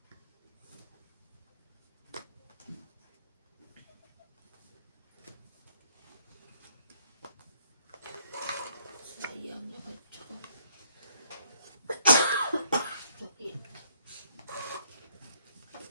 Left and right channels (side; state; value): both; inverted; correlation -0.65